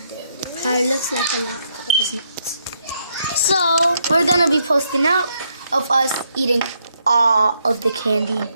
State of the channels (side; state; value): both; inverted; correlation -0.75